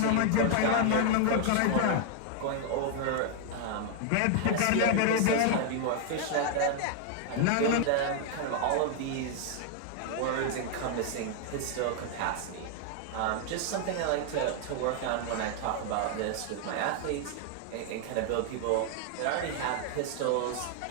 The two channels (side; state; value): both; different; correlation 0.00